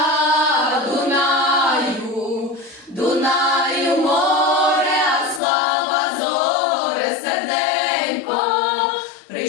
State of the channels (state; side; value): drops out; right; at 5.4 s